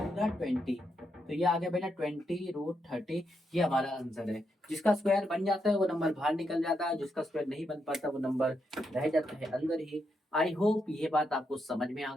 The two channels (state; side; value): normal; both; correlation 0.81